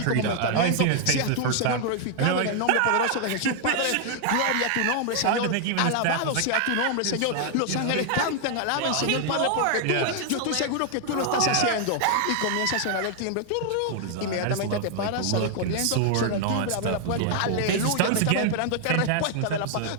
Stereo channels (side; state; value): both; different; correlation 0.00